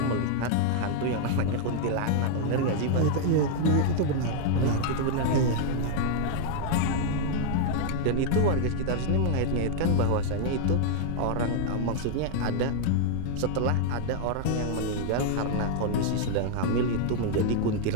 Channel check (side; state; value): both; different; correlation 0.00